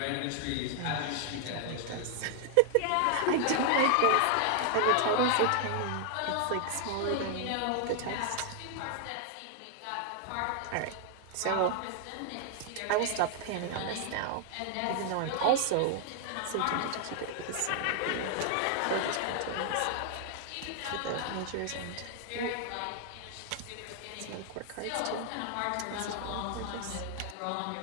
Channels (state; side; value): different; both; correlation 0.00